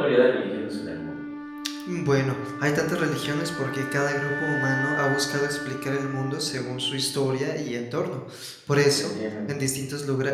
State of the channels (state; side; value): identical; both; correlation 1.00